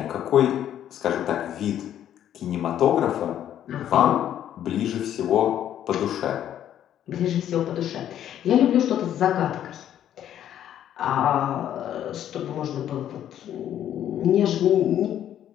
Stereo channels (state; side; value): quieter; right; 10.8 dB